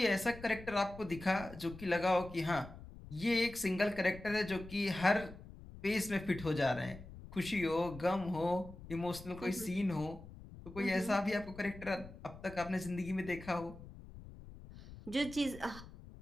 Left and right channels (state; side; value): noise; left; rumble, 16 dB below the sound